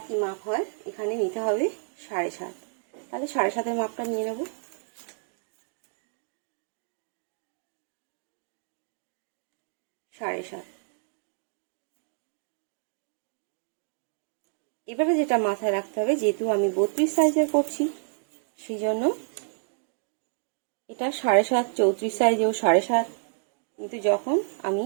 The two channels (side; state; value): left; silent; digital silence